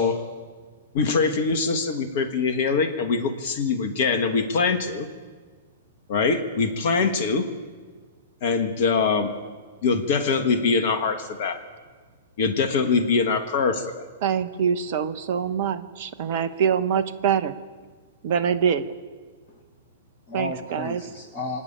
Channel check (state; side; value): inverted; both; correlation -0.33